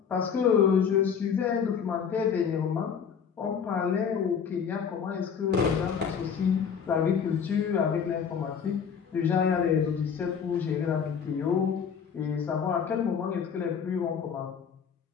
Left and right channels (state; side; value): quieter; right; 7.0 dB